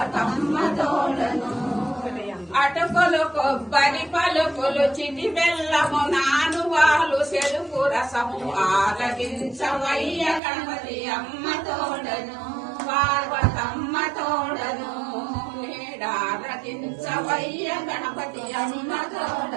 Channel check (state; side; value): drops out; left; at 10.4 s